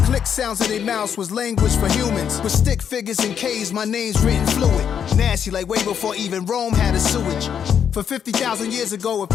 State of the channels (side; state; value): right; quieter; 8.1 dB